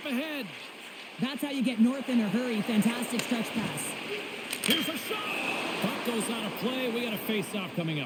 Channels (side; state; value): both; identical; correlation 1.00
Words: ahead. That's how you get north in a hurry. Fantastic stretch pass. Here's a shot. Puck goes out of play. We got a face-off coming